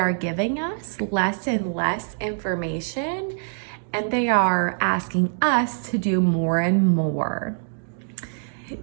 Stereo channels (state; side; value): silent; left; 62 dB below the other